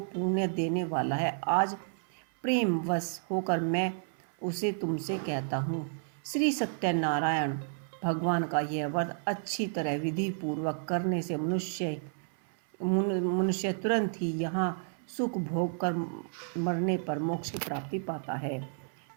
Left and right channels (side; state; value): left; silent; 57 dB below the other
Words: पुण्य देने वाला है। आज प्रेम वश होकर मैं उसे तुमसे कहता हूँ। श्री सत्यनारायण भगवान का यह व्रत अच्छी तरह विधि पूर्वक करने से मनुष्य तुरंत ही यहाँ सुख भोग कर मरने पर मोक्ष की प्राप्ति पाता है।